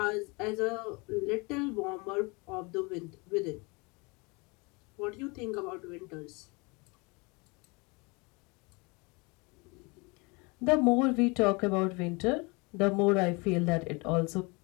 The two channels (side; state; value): right; quieter; 28.2 dB